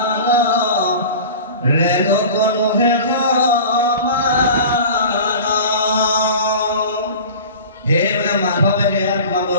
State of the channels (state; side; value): inverted; both; correlation -0.37